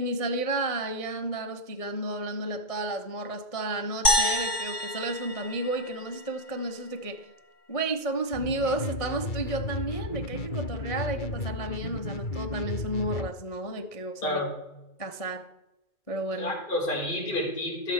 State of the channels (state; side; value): late; right; 2.2 ms